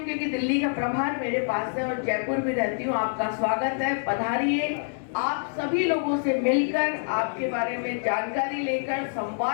क्योंकि दिल्ली का प्रभार मेरे पास है, और जयपुर भी रहती हूँ, आपका स्वागत है, पधारिए। आप सभी लोगों से मिलकर, आपके बारे में जानकारी लेकर,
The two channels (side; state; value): right; silent; digital silence